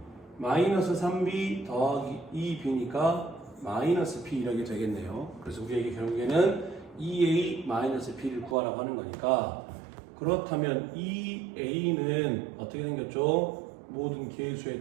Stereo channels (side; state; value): left; drops out; at 8.6 s